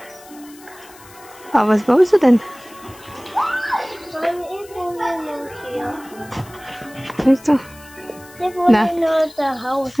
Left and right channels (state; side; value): noise; left; hiss, 22 dB below the sound